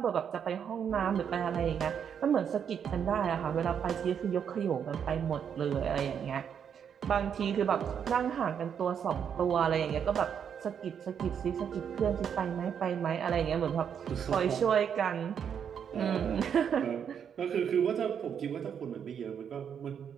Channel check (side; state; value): left; quieter; 7.9 dB